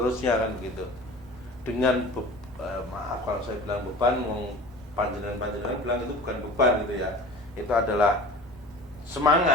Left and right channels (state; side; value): normal; both; correlation 0.40